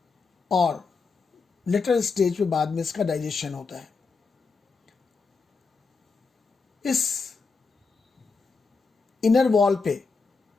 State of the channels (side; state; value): right; quieter; 4.6 dB